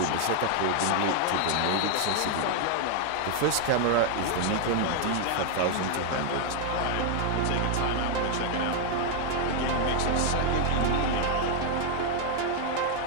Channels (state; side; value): different; both; correlation 0.00